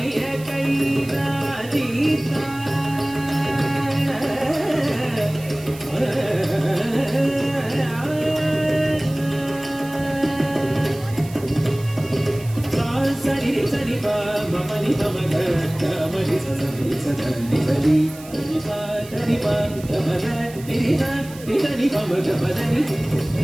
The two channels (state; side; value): noise; right; hiss, 19 dB below the sound